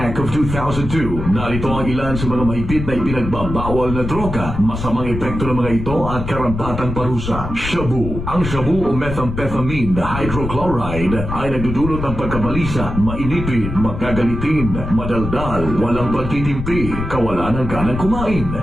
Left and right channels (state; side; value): noise; left; rumble, 6 dB below the sound